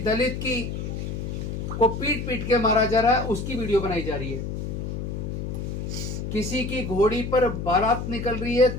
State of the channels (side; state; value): left; noise; hum, 4 dB below the sound